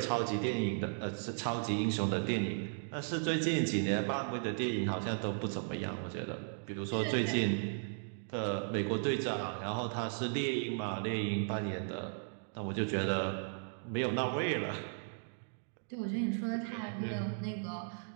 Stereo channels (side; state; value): left; silent; digital silence